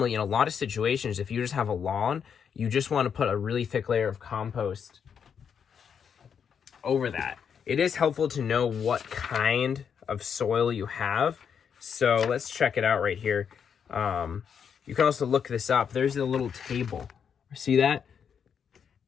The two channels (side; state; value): right; quieter; 7.3 dB